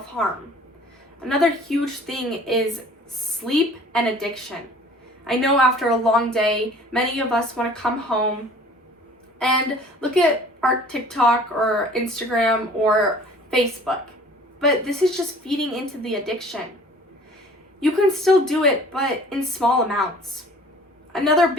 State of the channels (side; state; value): both; normal; correlation 0.49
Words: Another huge thing is sleep and addiction. I know after a long day, many of us want to come home and look at our TikTok or Instagram or Facebook, but this is just feeding into the addiction. You can still do it, but in small amounts. Another